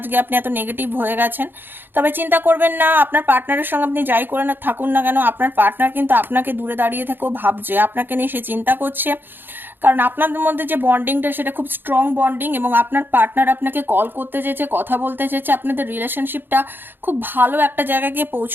আপনি এত নেগেটিভ হয়ে গেছেন। তবে চিন্তা করবেন না, আপনার পার্টনারের সঙ্গে আপনি যাই করে না থাকুন না কেন, আপনার পার্টনার কিন্তু আপনাকে দূরে দাঁড়িয়ে থেকেও ভাবছে, আপনাকে নিয়ে সে চিন্তা করছে। কারণ আপনাদের মধ্যে যে বন্ডিংটা সেটা খুব স্ট্রং বন্ডিং, এবং আপনার পার্টনার আপনাকে কল করতে চেয়েছে, কথা বলতে চেয়েছে। আপনাদের রিলেশনশিপটা খুব ভালো একটা জায়গায় গিয়ে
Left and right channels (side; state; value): left; late; 0.097 ms